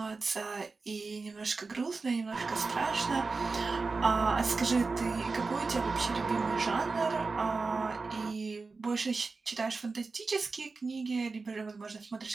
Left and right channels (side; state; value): left; quieter; 4.1 dB